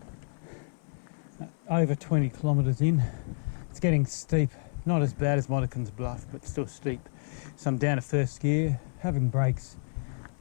over 20 kilometres in, it's getting steep. Not as bad as Monaghans Bluff, but still steep. So I'm down to first gear, having breaks,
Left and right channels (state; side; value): silent; right; 58 dB below the other